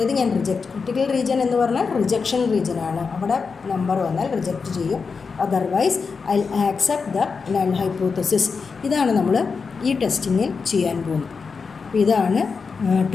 ഞാൻ ക്രിട്ടിക്കൽ റീജിയൻ എന്ന് പറഞ്ഞാൽ റിജക്ഷൻ റീജിയൻ ആണ്. അവിടെ നമ്പർ വന്നാൽ റിജക്റ്റ് ചെയ്യും. Otherwise I accept the null hypothesis. ഇതാണ് നമ്മൾ ഈ ടെസ്റ്റിങ്ങിൽ ചെയ്യാൻ പോകുന്നത്. അപ്പോൾ ഇതാണ്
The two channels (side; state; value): right; quieter; 5.1 dB